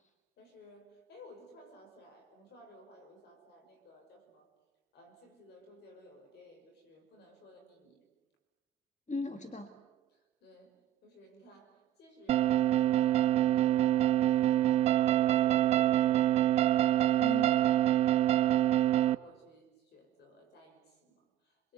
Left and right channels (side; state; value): left; quieter; 12.1 dB